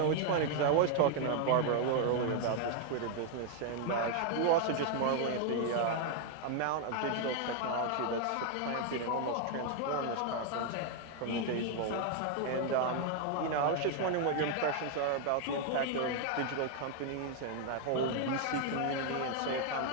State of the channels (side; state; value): both; different; correlation 0.00